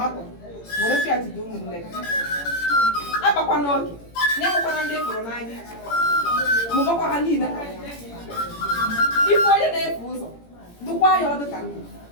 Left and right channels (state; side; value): late; right; 18 ms